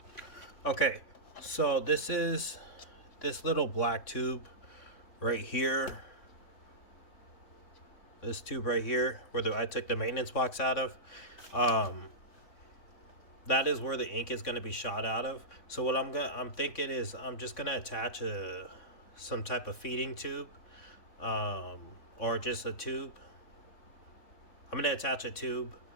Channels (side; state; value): right; late; 3.6 ms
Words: Okay, so this is this little black tube right here. This tube right here, where I took the maintenance box out of. That is where the ink is going to be shot out of. So what I'm thinking is I'm just going to attach some type of feeding tube, or just a tube. I'm going to attach a tube